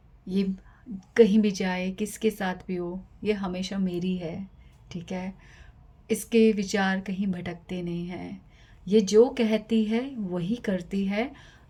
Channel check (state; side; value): identical; both; correlation 1.00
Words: ये कहीं भी जाए, किसके साथ भी हो, ये हमेशा मेरी है, ठीक है, इसके विचार कहीं भटकते नहीं हैं, ये जो कहती है वही करती है,